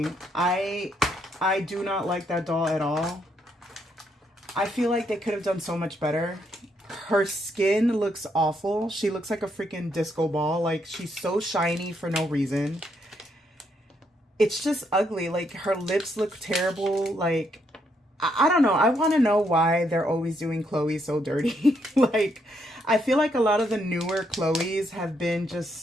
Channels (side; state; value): both; normal; correlation 0.75